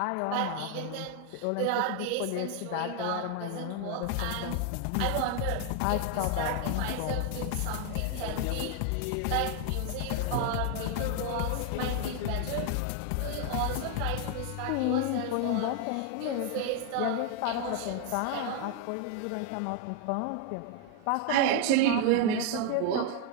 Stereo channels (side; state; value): both; different; correlation 0.00